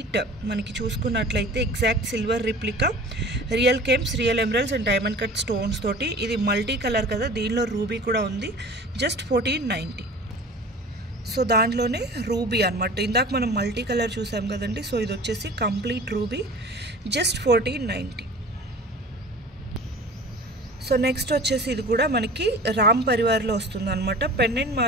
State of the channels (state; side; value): normal; both; correlation 0.41